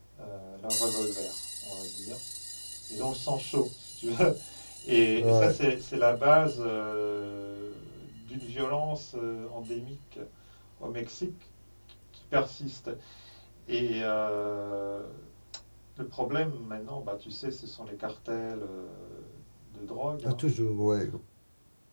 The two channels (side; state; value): both; inverted; correlation -1.00